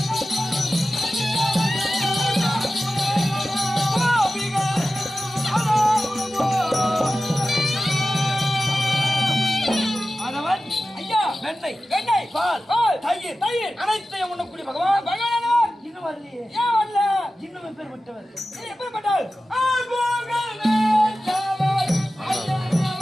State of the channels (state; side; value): normal; both; correlation 0.94